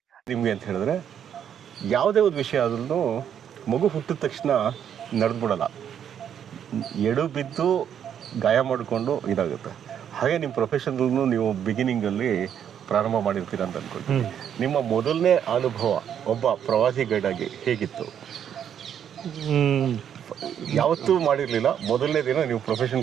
ನಿಮ್ಗೆ ಅಂತ ಹೇಳಿದ್ರೆ ಯಾವುದೇ ಒಂದು ವಿಷಯ ಆದ್ರೂ ಮಗು ಹುಟ್ಟಿದ ತಕ್ಷಣ ನಡೆದ್ಬಿಡಲ್ಲ, ಎಡು ಬಿದ್ದು ಗಾಯ ಮಾಡಿಕೊಂಡು ಇದಾಗುತ್ತೆ. ಹಾಗೆ ನಿಮ್ಮ ಪ್ರೊಫೆಷನಲ್ನು ನೀವು ಬಿಗಿನಿಂಗ್ ಅಲ್ಲಿ ಪ್ರಾರಂಭ ಮಾಡಿರ್ತೀರ ಅಂತ ಅನ್ಕೊಳ್ತೀನಿ. ನಿಮ್ಮ ಮೊದಲನೇ ಅನುಭವ ಒಬ್ಬ ಪ್ರವಾಸಿ ಗೈಡ್ ಆಗಿ ಹೇಗಿತ್ತು? ಯಾವತ್ತೂ ಮಾಡಿರ್ಲಿಲ್ಲ, ಮೊದಲನೇ ದಿನ ನೀವು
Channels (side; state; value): left; quieter; 9.0 dB